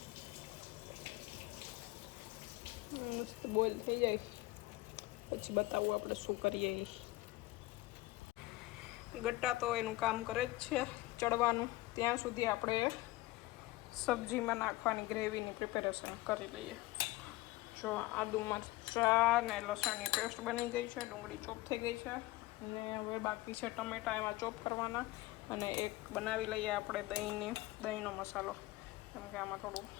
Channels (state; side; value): quieter; right; 19.1 dB